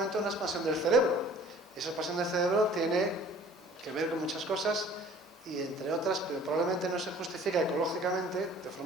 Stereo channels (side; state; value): both; normal; correlation 0.51